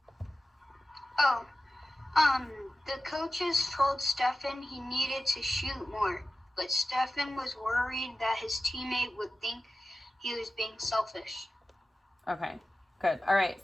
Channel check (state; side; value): normal; both; correlation 0.95